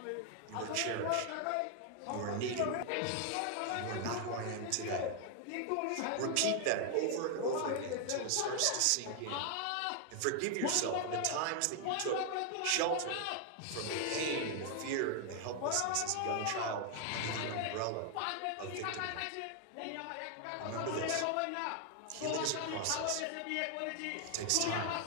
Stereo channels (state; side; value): different; both; correlation 0.00